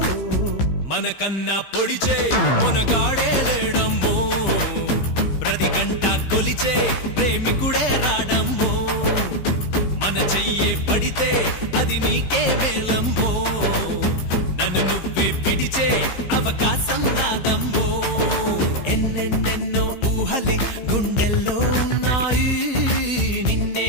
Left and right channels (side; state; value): right; late; 15 ms